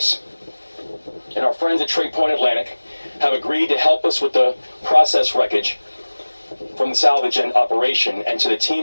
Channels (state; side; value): inverted; both; correlation -1.00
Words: And our friends at Trade Point Atlantic have agreed to help us with the process wreckage from the salvage and operation. And to the